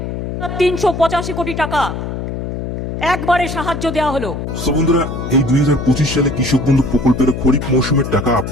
385 কোটি টাকা একবারে সাহায্য দেওয়া হলো। সো বন্ধুরা, এই 2025 সালে কৃষক বন্ধু প্রকল্পের খরিফ মৌসুমের টাকা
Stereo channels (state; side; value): noise; left; hum, 5 dB below the sound